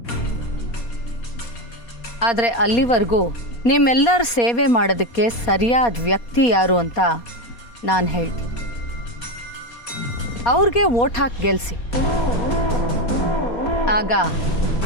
ಆದರೆ ಅಲ್ಲಿವರೆಗೂ ನಿಮ್ಮೆಲ್ಲರ ಸೇವೆ ಮಾಡೋದಕ್ಕೆ ಸರಿಯಾದ ವ್ಯಕ್ತಿ ಯಾರು ಅಂತ ನಾನು ಹೇಳ್ತೀನಿ. ಅವ್ರಿಗೆ ವೋಟ್ ಹಾಕಿ ಗೆಲ್ಲಿಸಿ, ಆಗ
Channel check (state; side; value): late; right; 4.2 ms